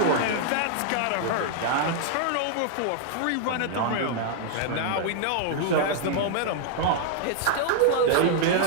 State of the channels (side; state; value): both; different; correlation -0.01